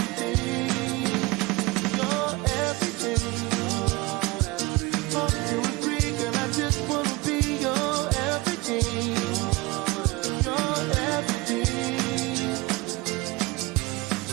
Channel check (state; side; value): quieter; left; 22.9 dB